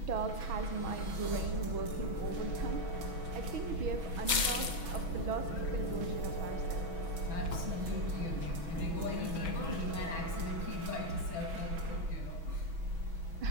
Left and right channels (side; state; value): left; late; 6.2 ms